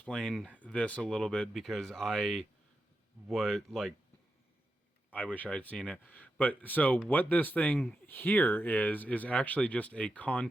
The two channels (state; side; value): normal; both; correlation 0.88